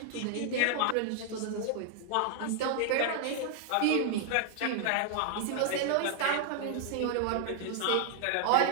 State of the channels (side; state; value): both; different; correlation -0.01